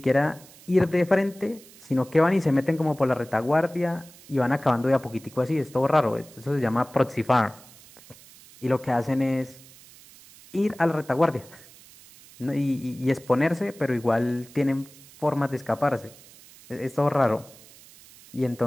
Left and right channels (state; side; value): noise; right; hiss, 22 dB below the sound